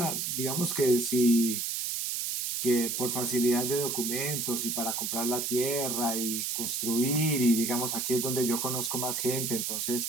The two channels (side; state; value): right; noise; hiss, 1 dB below the sound